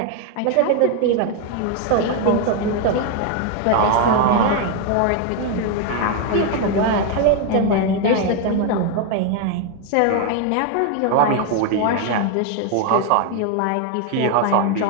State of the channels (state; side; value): different; both; correlation 0.01